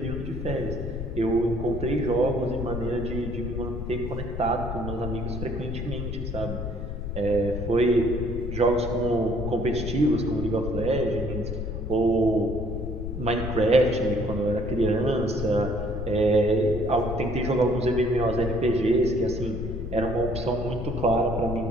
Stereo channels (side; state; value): left; noise; rumble, 6 dB below the sound